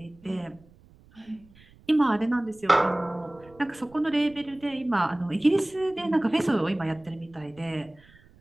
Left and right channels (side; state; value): right; noise; rumble, 27 dB below the sound